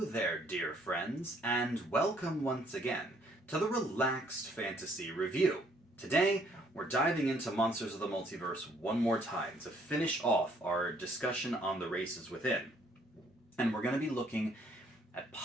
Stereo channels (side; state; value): both; normal; correlation 0.65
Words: dear friends, and welcome once again to the Relaxed Fantasy Review. Today, we're diving into Monsters of the Multiverse one more time to finish off our discussion on the races within. And we're going to be looking at